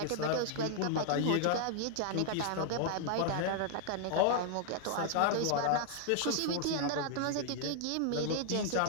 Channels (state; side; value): different; both; correlation 0.00